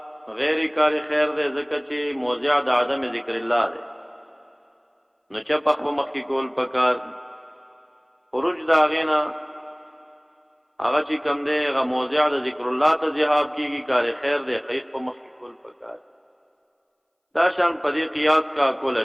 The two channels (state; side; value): identical; both; correlation 1.00